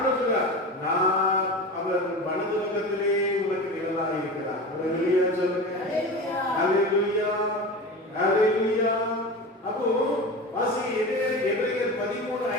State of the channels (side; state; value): both; normal; correlation 0.29